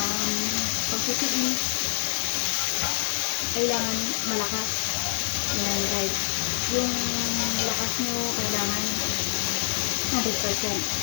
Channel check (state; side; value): silent; right; digital silence